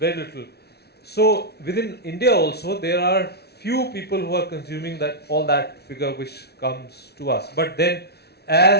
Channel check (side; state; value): right; late; 0.48 ms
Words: little. So within India also, there are few people who are consuming all that figure which comes to us. But then